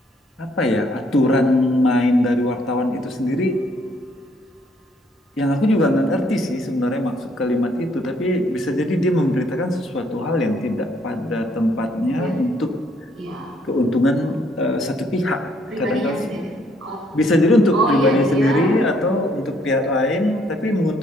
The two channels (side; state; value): both; normal; correlation 0.67